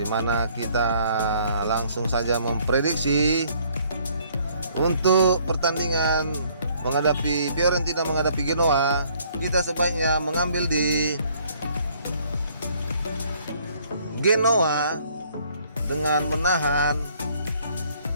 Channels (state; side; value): inverted; both; correlation -0.62